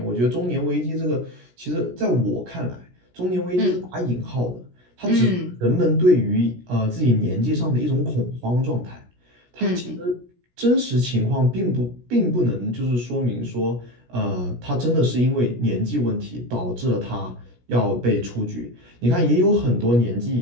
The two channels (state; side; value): late; left; 17 ms